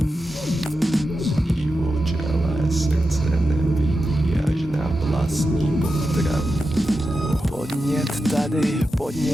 Sní v čele, srdce nevidí až na vlastní potravu. Podnět tady,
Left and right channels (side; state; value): both; normal; correlation 0.90